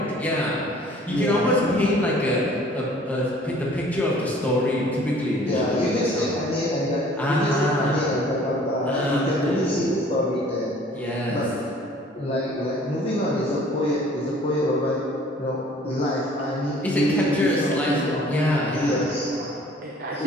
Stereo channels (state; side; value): normal; both; correlation 0.53